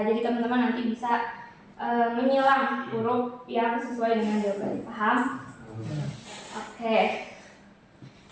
Jadi teman-teman nanti bisa menyilang huruf yang sesuai dengan jawabannya. Paham? Oke.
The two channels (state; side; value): identical; both; correlation 1.00